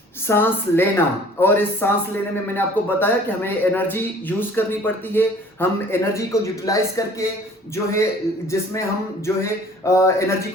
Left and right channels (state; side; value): normal; both; correlation 0.51